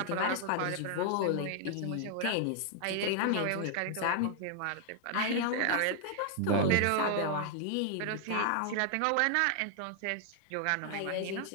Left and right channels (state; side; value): different; both; correlation 0.00